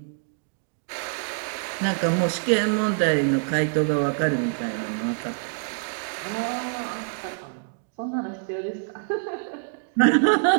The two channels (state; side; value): silent; left; digital silence